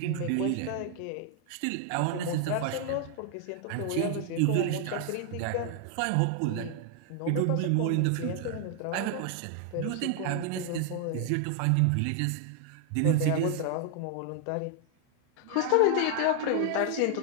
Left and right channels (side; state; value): both; different; correlation 0.00